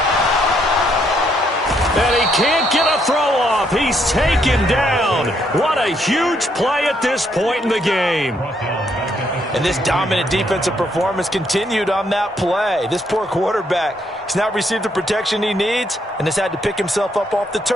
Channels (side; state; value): both; normal; correlation 0.73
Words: And he can't get a throw off. He's taken down. What a huge play at this point in the game. And this dominant defensive performance continued on that play. This poor quarterback has not received the protection he needs and has had to pick himself up off the